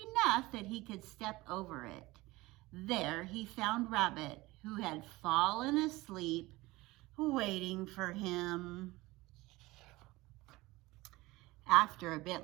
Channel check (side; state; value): left; quieter; 20.3 dB